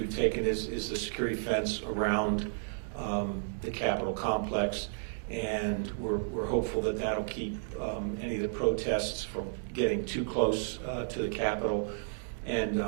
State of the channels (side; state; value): left; silent; digital silence